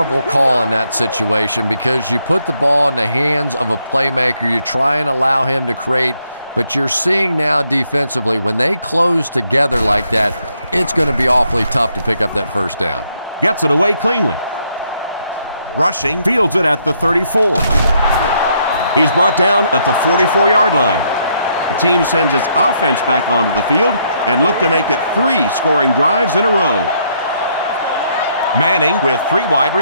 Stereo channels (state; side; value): inverted; both; correlation -0.73